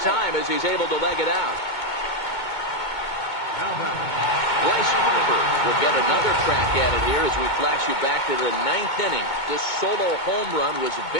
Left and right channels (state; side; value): late; right; 2.2 ms